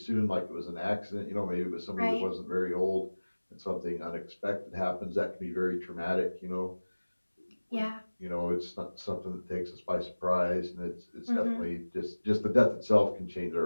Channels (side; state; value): both; inverted; correlation -1.00